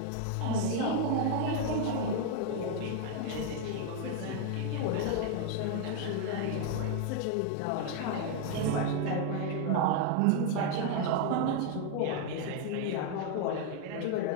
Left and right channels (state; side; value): different; both; correlation 0.00